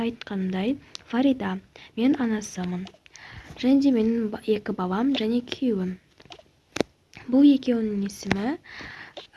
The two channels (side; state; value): both; identical; correlation 1.00